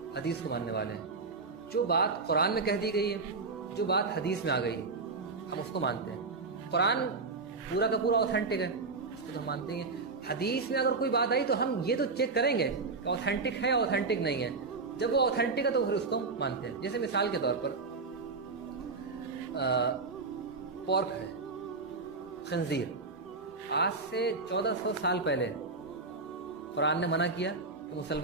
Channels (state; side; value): quieter; left; 4.1 dB